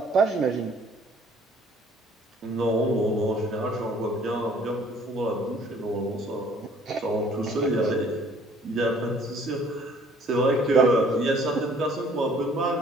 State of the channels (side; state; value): both; normal; correlation 0.57